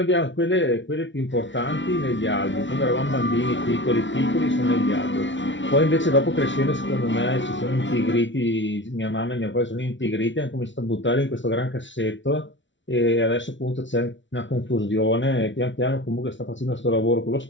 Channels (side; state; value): right; late; 0.55 ms